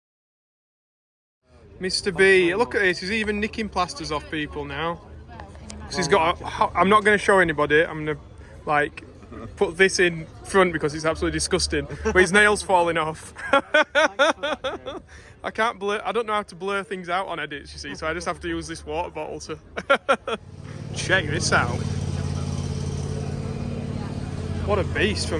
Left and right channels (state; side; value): identical; both; correlation 1.00